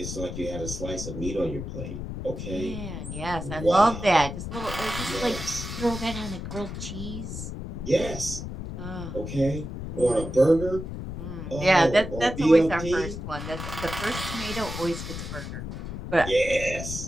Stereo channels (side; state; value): left; noise; rumble, 7 dB below the sound